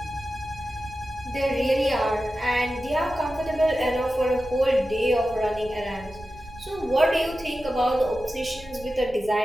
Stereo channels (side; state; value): right; noise; rumble, 19 dB below the sound